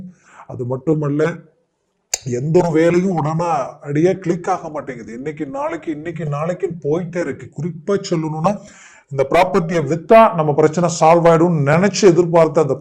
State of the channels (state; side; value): identical; both; correlation 1.00